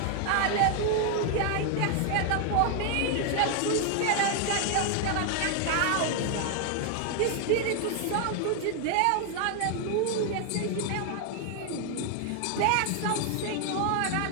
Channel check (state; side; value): different; both; correlation 0.00